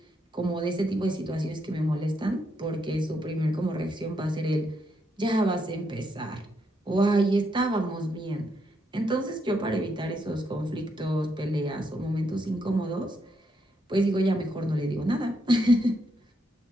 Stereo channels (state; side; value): normal; both; correlation 0.78